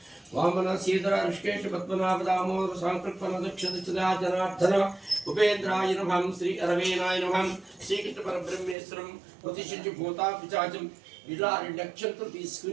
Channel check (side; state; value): left; drops out; at 8.8 s